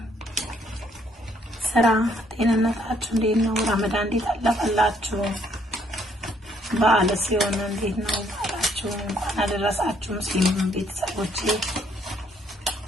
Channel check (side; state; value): both; normal; correlation 0.68